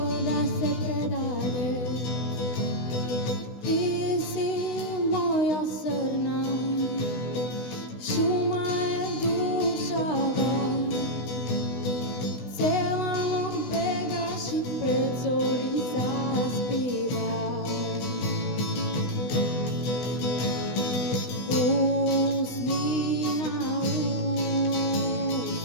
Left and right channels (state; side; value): late; right; 16 ms